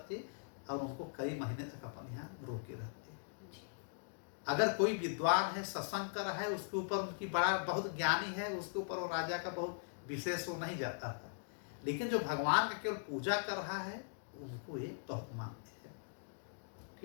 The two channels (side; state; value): right; silent; digital silence